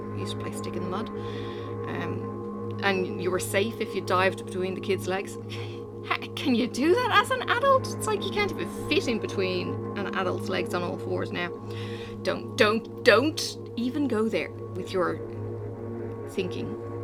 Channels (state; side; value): identical; both; correlation 1.00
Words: We used to play Stick in the Mud. And you were safe if you dived between the kids' legs. Can you do that as an adult? It's like you can't even fit in between an adult's legs on all fours now. Don't even go there with your thinking.